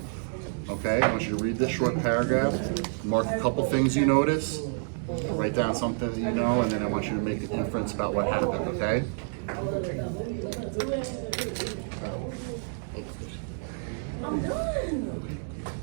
Okay, I want you to read this short paragraph, mark a couple things you notice, write down something that you know, and then I want you to make an inference about what happened, okay?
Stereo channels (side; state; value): left; silent; 59 dB below the other